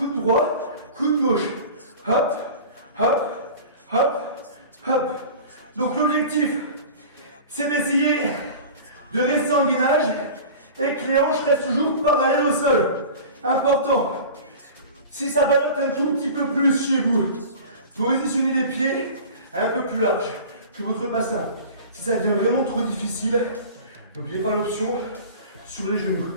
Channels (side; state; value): both; inverted; correlation -0.37